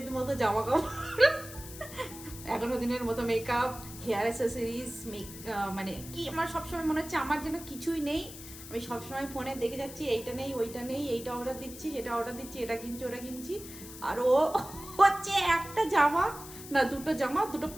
মতো জামা কাপড়, 11 দিনের মতো মেকআপ, হেয়ার অ্যাসেসরিজ, মানে কি আমার সবসময় মনে হচ্ছে আমার যেন কিছুই নেই। আমি সবসময় ফোনে দেখে যাচ্ছি এইটা নেই ওইটা নেই, এইটা অর্ডার দিচ্ছি সেটা অর্ডার দিচ্ছি, এটা কিনছি ওটা কিনছি। আর ও হচ্ছে একটা জামা না 2টো জামা 2টো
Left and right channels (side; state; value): left; noise; hiss, 14 dB below the sound